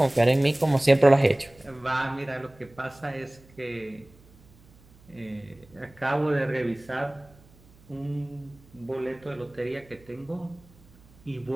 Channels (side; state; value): right; noise; hum, 27 dB below the sound